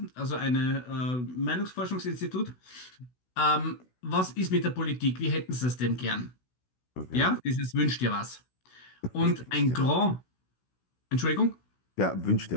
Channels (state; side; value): late; right; 16 ms